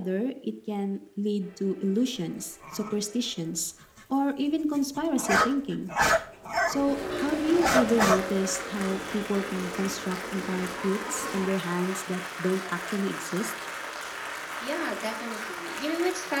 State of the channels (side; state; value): both; identical; correlation 1.00